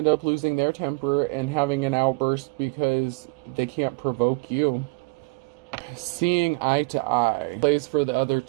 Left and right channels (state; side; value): quieter; left; 29.6 dB